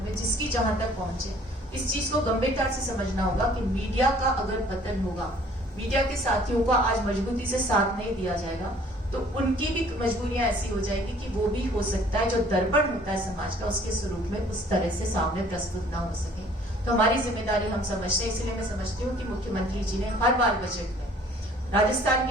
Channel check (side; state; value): both; normal; correlation 0.55